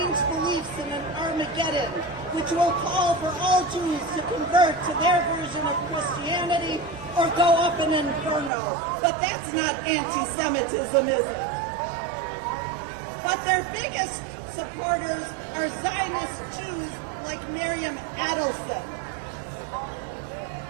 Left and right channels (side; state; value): left; drops out; at 8.5 s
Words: beliefs in an Armageddon, which will call for all Jews to convert to their version of Christianity or go up in an inferno. But that's not anti-Semitism, is it? But their biggest supporters are Zionist Jews like Miriam Adelson.